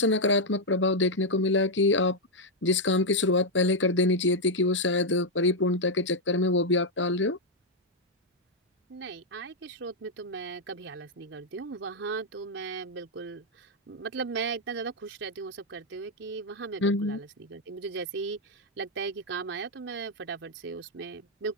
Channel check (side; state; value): both; normal; correlation -0.01